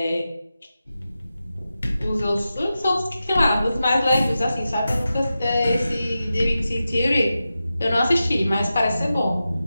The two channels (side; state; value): both; inverted; correlation -0.92